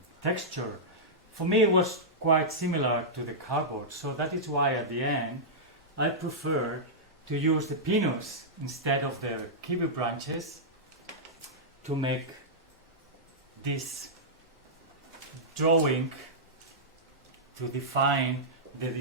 texture? For me, it was quite similar to the cardboard. So that is why at the end, I prefer to use the pinus instead of the kiwi branches to make this drawing, to define the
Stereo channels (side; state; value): both; normal; correlation -0.12